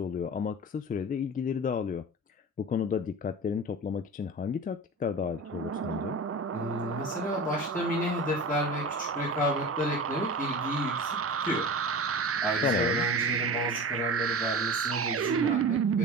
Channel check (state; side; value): normal; both; correlation 0.32